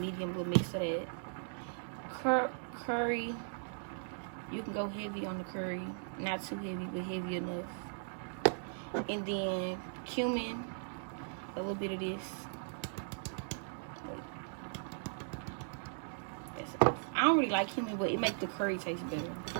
little mix of that. Curry, you can go heavy on the curry. Not too heavy, but heavy enough. And then cumin, a little bit of this. I don't really like cumin, but it makes the curry taste better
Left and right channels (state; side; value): silent; left; digital silence